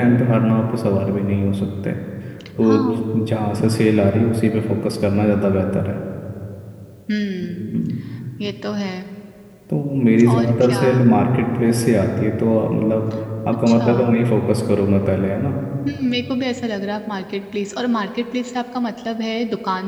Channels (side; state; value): both; identical; correlation 1.00